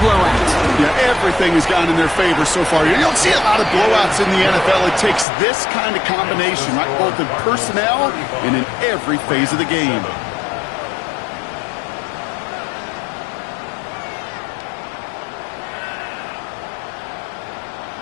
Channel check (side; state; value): right; drops out; at 5.2 s